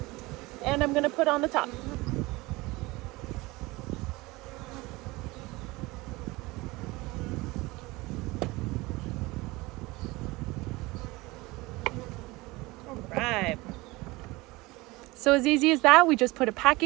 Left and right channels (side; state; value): left; quieter; 21.8 dB